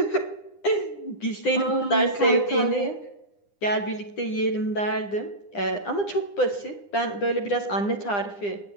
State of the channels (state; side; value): late; right; 9.9 ms